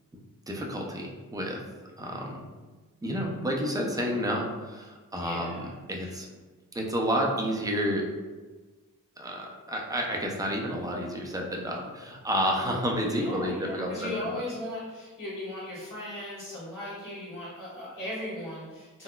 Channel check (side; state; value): both; normal; correlation 0.32